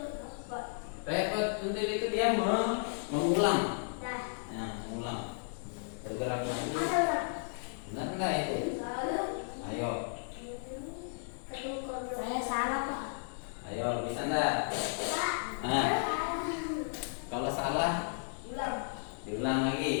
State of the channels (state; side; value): silent; right; digital silence